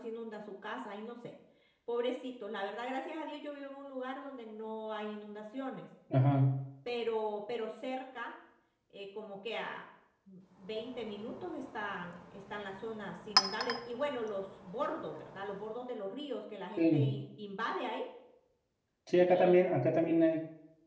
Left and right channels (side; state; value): both; identical; correlation 1.00